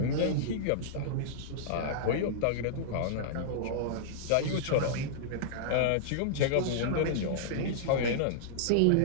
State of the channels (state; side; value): different; both; correlation -0.02